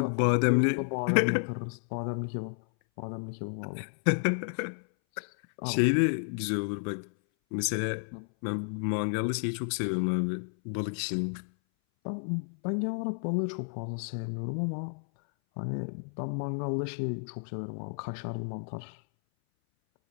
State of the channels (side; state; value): right; silent; 57 dB below the other